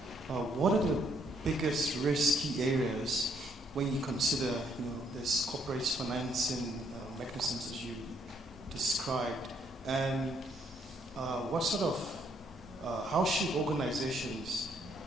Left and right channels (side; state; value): both; normal; correlation 0.69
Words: What are the biggest risky areas when you consider, this corporate financing mechanisms as you described, and what sort of, how should organizations